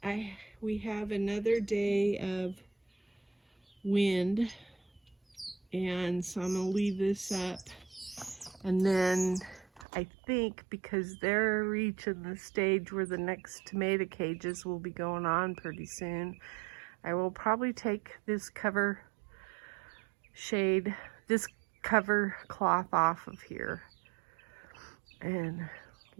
we have another day of wind, and so I'm gonna leave this up, and then I think because they're reaching the stage where the next tomato cages will be going on pretty soon, I will probably take this cover cloth off of here and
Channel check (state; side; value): drops out; left; at 9.9 s